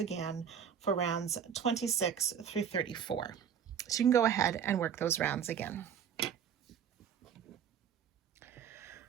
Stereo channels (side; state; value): left; quieter; 8.0 dB